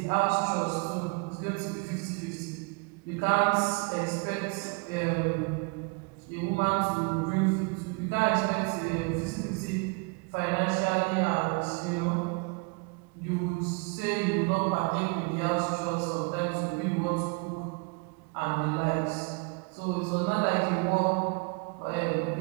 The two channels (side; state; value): left; quieter; 31.7 dB